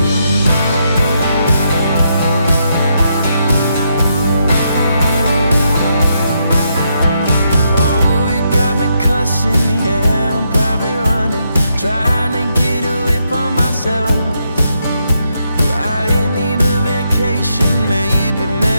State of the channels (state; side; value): inverted; both; correlation -0.79